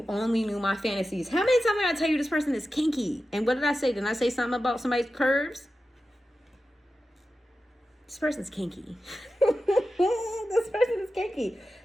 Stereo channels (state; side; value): normal; both; correlation 0.93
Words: only knew my fantasies. How many times did I tell you this person is kinky? And what did I say? Didn't I say something about somebody's curves? This person's kinky. This person is kinky.